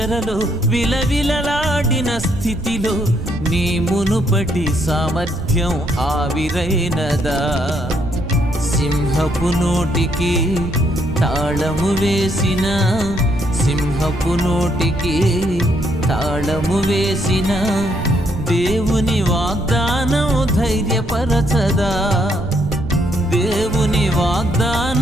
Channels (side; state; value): right; noise; rumble, 8 dB below the sound